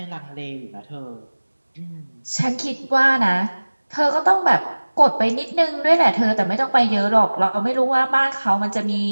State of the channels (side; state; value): both; inverted; correlation -1.00